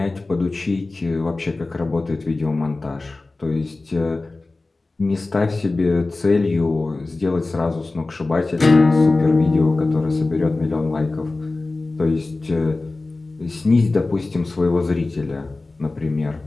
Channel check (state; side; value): quieter; right; 3.3 dB